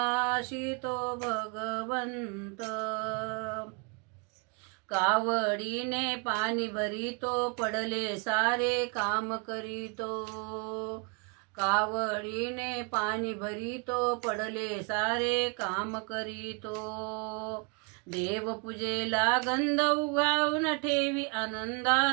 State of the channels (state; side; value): quieter; left; 32.0 dB